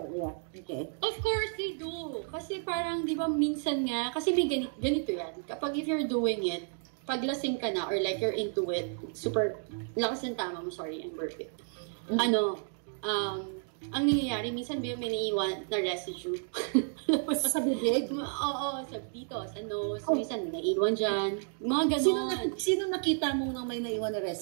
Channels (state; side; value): silent; left; 57 dB below the other